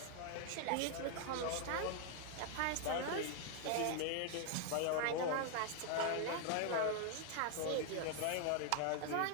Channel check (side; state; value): both; different; correlation 0.00